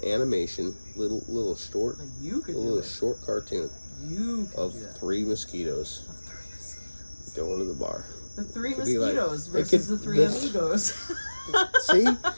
animation, little short, short cartoon of 3 mosquitoes going to the bar. The 3 mosquitoes versus the 3 amigos. See,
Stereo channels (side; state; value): both; inverted; correlation -1.00